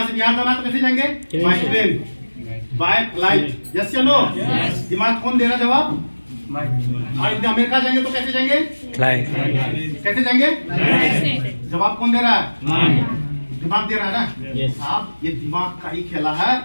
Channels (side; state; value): both; inverted; correlation -1.00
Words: से बिहार जाना तो कैसे जाएंगे? By train, by flight. Yes या नो? दिमाग कौन दे रहा जवाब? और अमेरिका जाएंगे तो कैसे जाएंगे? फ्लाइट। कैसे जाएंगे? जवाब कौन दे रहा है? दिमाग दे रहा है ना? साहब ये दिमाग का ही खेला है